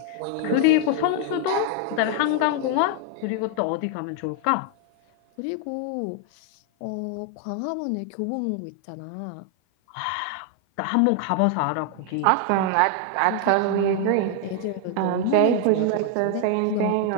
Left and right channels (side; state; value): both; different; correlation 0.00